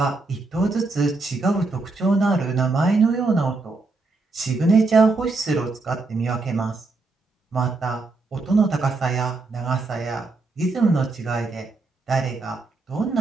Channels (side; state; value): left; quieter; 3.6 dB